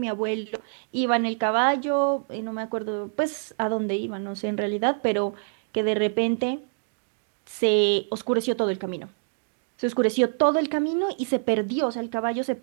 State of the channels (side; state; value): left; silent; digital silence